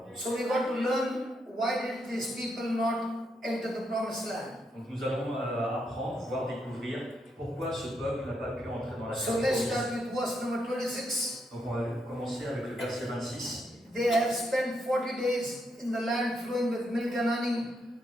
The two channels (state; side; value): normal; both; correlation 0.79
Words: Dieu. So we got to learn, why did these people not enter the promised land? Donc nous allons apprendre, voire découvrir pourquoi ce peuple n'a pas pu entrer dans la So terre let's promise. start with verse number 26. Donc on va commencer avec le verset 26. They have spent 40 days in the land flowing with milk and honey.